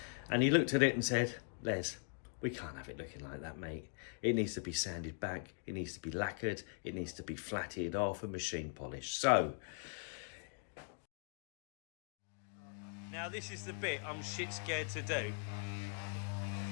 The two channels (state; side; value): silent; right; 51 dB below the other